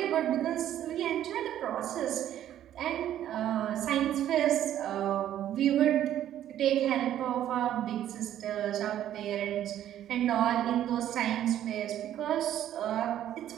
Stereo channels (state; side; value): quieter; left; 11.5 dB